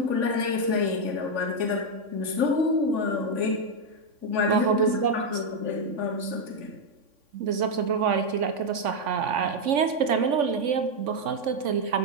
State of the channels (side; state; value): left; late; 3.5 ms